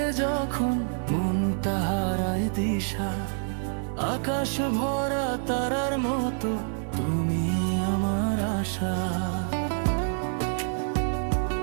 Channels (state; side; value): silent; left; 60 dB below the other